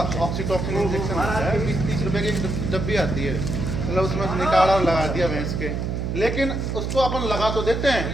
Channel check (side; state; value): right; noise; hum, 2 dB below the sound